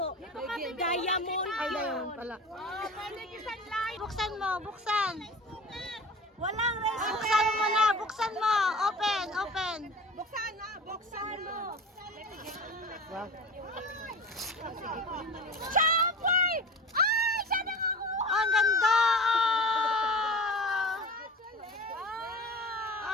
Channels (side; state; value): both; normal; correlation 0.35